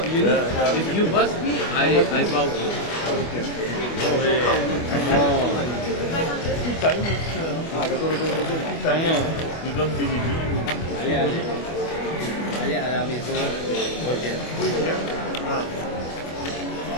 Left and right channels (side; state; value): right; late; 25 ms